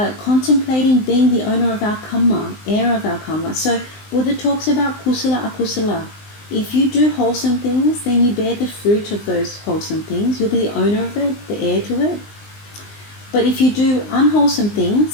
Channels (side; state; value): right; late; 19 ms